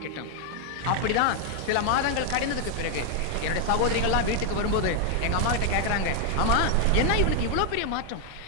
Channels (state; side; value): different; both; correlation 0.00